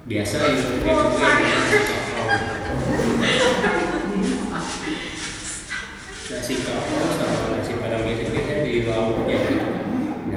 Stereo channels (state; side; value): identical; both; correlation 1.00